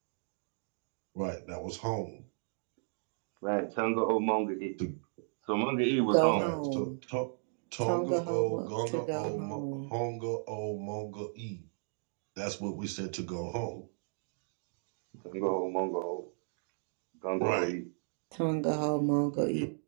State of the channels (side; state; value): left; silent; digital silence